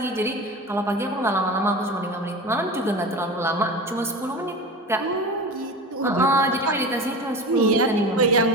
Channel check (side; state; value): both; normal; correlation 0.30